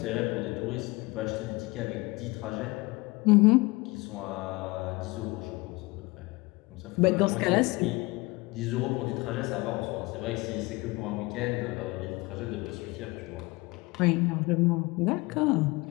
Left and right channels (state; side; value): quieter; right; 23.6 dB